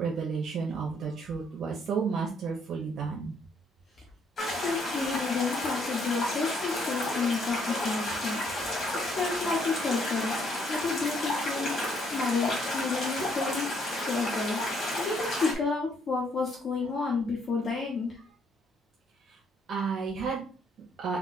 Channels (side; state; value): both; normal; correlation 0.68